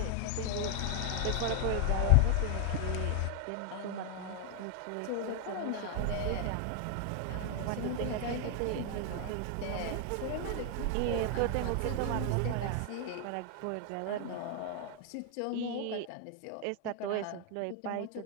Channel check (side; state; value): both; different; correlation 0.00